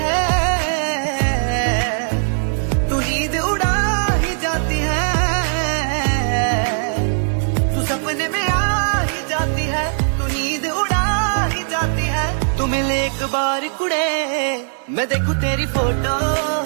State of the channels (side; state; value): left; silent; digital silence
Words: है तू नींद उड़ा ही जाती है तू सपने में आ ही जाती है तू नींद उड़ा ही जाती है तू मिले एक बार कुड़े मैं देखूं तेरी फोटो